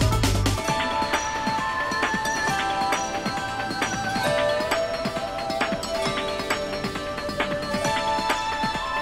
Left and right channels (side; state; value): both; identical; correlation 1.00